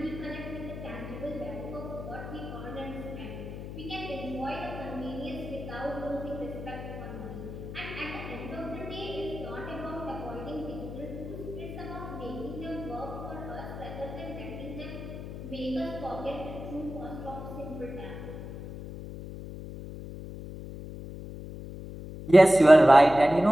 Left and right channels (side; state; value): left; noise; hum, 9 dB below the sound